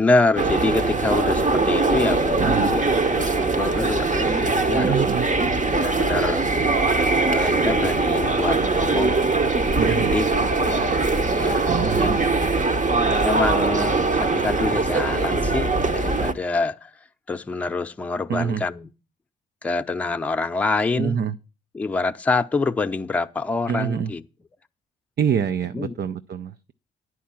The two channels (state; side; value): normal; both; correlation 0.44